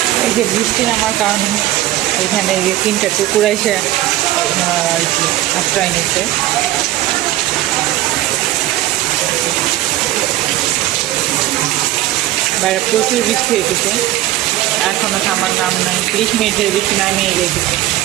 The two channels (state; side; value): quieter; left; 15.1 dB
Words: এই যে বৃষ্টি নামার কারণে এখানে এই যে 3টা কুকুর এসে আর কি আশ্রয় নিচ্ছে। বাইরে প্রচুর বৃষ্টি হয়েছে, এখনো থামার নাম নাই, 30 মিনিটের বৃষ্টি নামিয়ে রেখেছে।